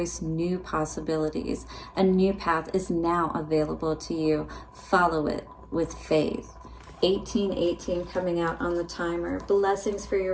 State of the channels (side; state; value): both; identical; correlation 1.00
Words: new possibilities. A new path is now available to you. Follow it with faith. 1818 coming out on the timer. Blessings for your